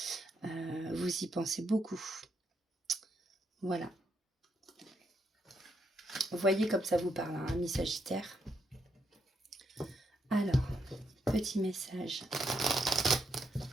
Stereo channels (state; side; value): normal; both; correlation 0.79